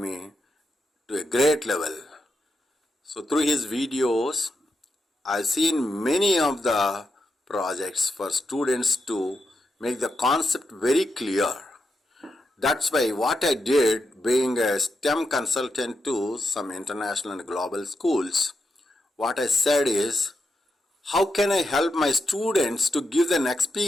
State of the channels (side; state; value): both; normal; correlation 0.86